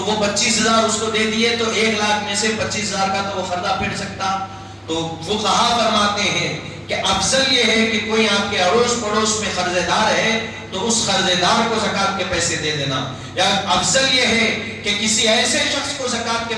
وہ 25,000 اس کو دے دیے تو 1 لاکھ میں سے 25,000 کا تو وہ قرضہ پھیر سکتا۔ تو فقہا فرماتے ہیں کہ افضل یہ ہے کہ کوئی آپ کے اڑوس پڑوس میں قرض دار ہے تو اس قرض دار کو زکات کے پیسے دے دینا، یا افضل یہ ہے کہ کسی ایسے شخص کو زکات کے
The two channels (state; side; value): identical; both; correlation 1.00